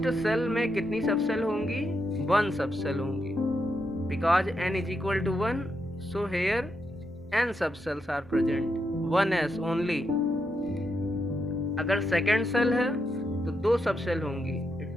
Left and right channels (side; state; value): both; normal; correlation 0.82